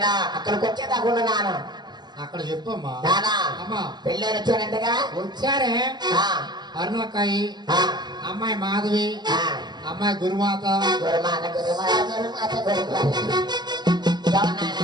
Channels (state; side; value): late; left; 0.21 ms